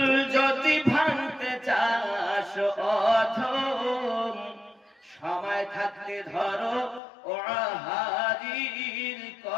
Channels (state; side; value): drops out; right; at 7.0 s